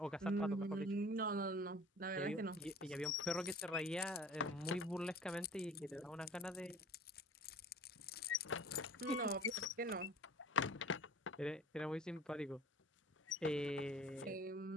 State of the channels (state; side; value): normal; both; correlation 0.45